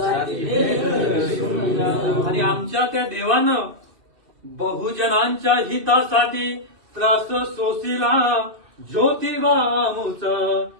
भेद विसरून जाऊ. आणि आमच्या त्या देवानं बहुजनांच्या हितासाठी त्रास सोसिला ज्योतिबामुच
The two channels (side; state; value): left; late; 2.3 ms